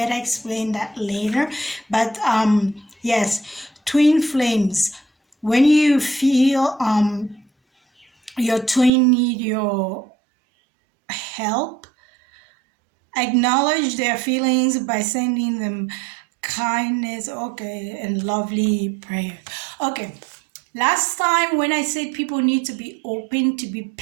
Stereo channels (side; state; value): left; drops out; at 8.9 s